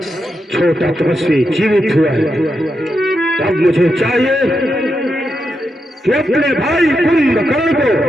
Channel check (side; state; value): both; normal; correlation 0.85